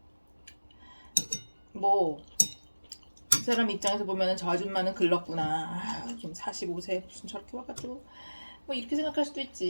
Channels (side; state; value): both; inverted; correlation -1.00